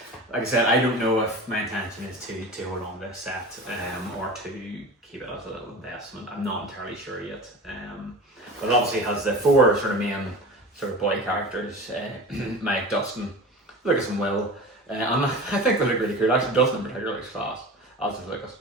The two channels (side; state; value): both; normal; correlation 0.33